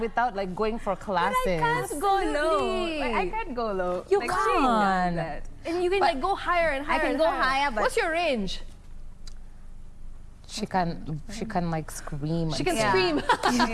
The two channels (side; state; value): both; identical; correlation 1.00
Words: like going for classes. But I can't go low. I can't go low. You like, can't. And you can like go higher and higher. I can go higher, but what's your range? She can like scream. She can Yeah. scream.